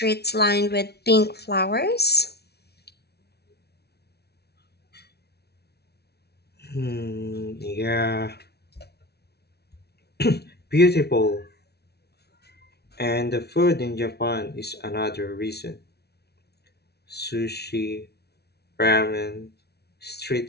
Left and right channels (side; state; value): right; late; 0.48 ms